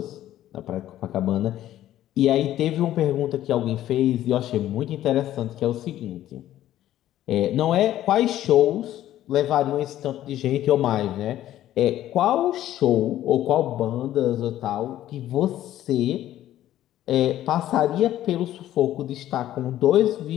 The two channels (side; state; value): right; quieter; 13.0 dB